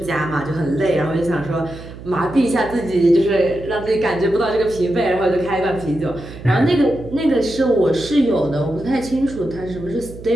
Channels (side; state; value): right; noise; hum, 14 dB below the sound